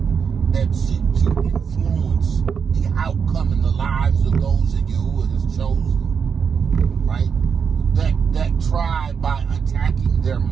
that seek to influence the outcome in the lives of those that Yahuwah has chosen, right? That try by attacking their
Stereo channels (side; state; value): left; quieter; 6.4 dB